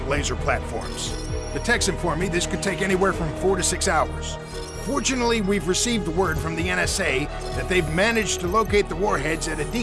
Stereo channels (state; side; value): identical; both; correlation 1.00